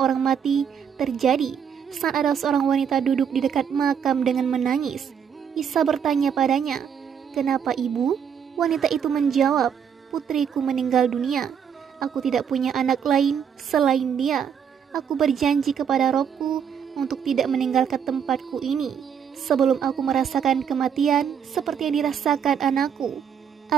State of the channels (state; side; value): quieter; left; 7.7 dB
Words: mati terjadi saat ada seorang wanita duduk di dekat makam dengan menangis. Isa bertanya padanya, "Kenapa ibu?" Wanita itu menjawab, "Putriku meninggal dunia. Aku tidak punya anak lain selain dia. Aku berjanji kepada Robku untuk tidak meninggalkan tempatku ini sebelum aku merasakan kematian seperti yang dirasakan anakku,